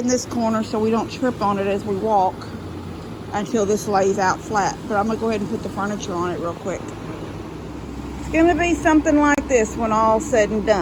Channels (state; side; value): identical; both; correlation 1.00